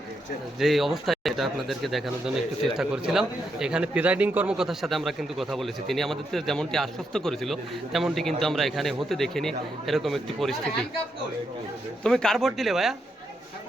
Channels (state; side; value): normal; both; correlation 0.81